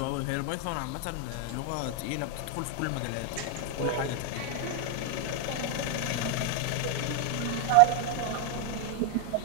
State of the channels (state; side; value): different; both; correlation 0.00